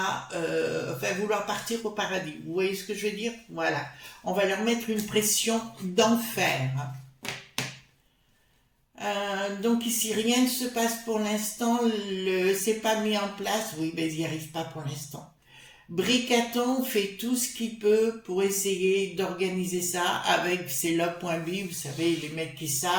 vouloir partir au paradis. Vous voyez ce que je veux dire? Voilà. On va leur mettre une pression d'enfer. Donc ici, rien ne se passe pour l'instant, c'est pas mis en place, oui, mais ils n'y arrivent pas pour l'instant. Bricaton fait tout ce qu'il peut pour essayer d'organiser ça avec ses logs.b, vous savez, les mecs qui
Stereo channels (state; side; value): identical; both; correlation 1.00